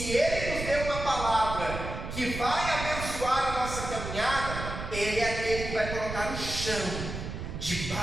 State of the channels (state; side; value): noise; right; rumble, 6 dB below the sound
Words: Ele nos deu uma palavra que vai abençoar a nossa caminhada, Ele é aquele que vai colocar o chão